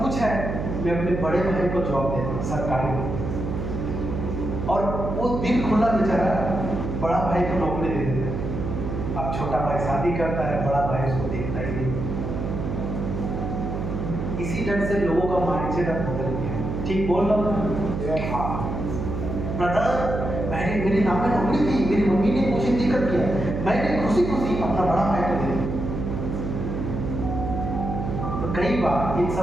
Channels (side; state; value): right; noise; hum, 4 dB below the sound